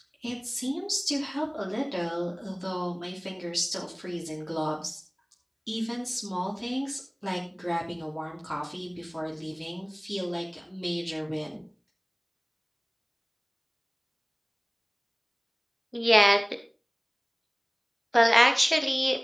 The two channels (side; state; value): both; identical; correlation 1.00